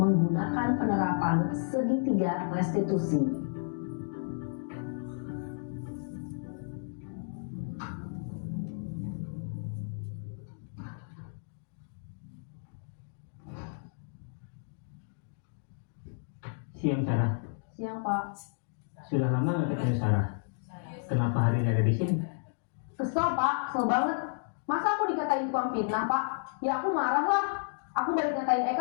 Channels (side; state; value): right; silent; digital silence